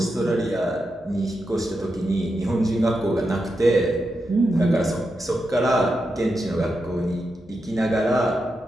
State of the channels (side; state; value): both; normal; correlation 0.87